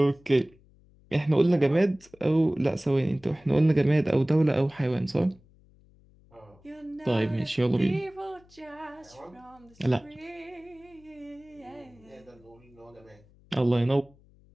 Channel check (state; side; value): noise; left; hum, 28 dB below the sound